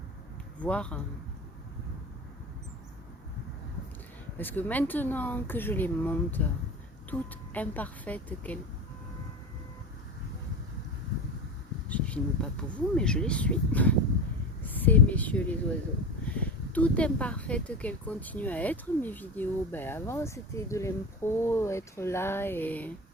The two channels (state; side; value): normal; both; correlation 0.27